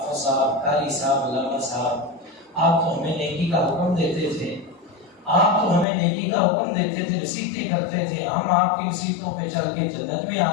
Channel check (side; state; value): right; drops out; at 5.9 s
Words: صاحب، قاری صاحب، علامہ صاحب، آپ تو ہمیں نیکی کا حکم دیتے تھے، آپ تو ہمیں نیکی کا حکم دیتے تھے، نصیحتیں کرتے تھے، ہم آپ کی نصیحتوں پہ چل کے جنت میں